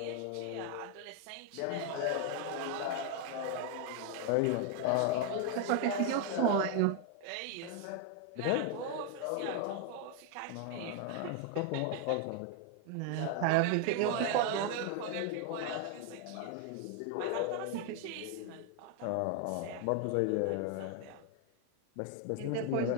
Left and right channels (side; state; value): both; different; correlation 0.01